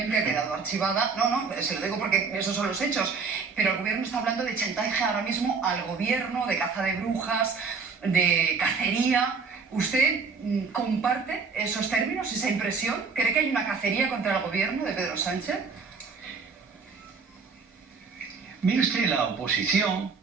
ha quedado archivada. No, se lo digo porque esos son los hechos. Pero el gobierno está hablando de chantaje ahora mismo al gobierno, de caza de brujas, de cacería. ¿Usted comparte esos términos, esa impresión? ¿Cree que hay una cacería contra el gobierno de Pedro Sánchez? Mire usted, la oposición,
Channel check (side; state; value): left; quieter; 5.0 dB